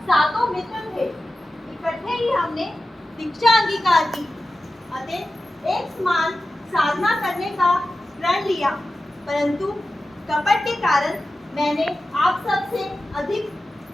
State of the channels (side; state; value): both; normal; correlation 0.93